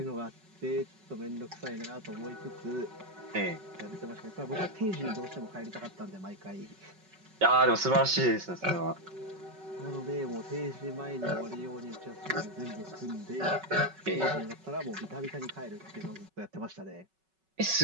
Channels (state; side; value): late; left; 5.3 ms